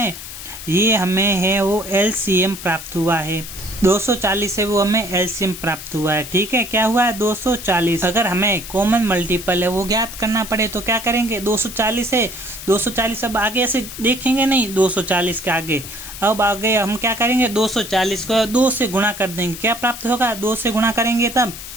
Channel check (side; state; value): left; noise; hiss, 11 dB below the sound